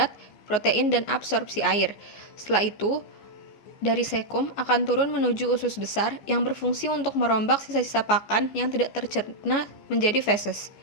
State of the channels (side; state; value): right; late; 14 ms